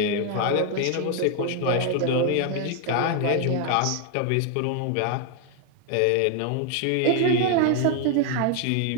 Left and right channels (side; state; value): both; different; correlation 0.01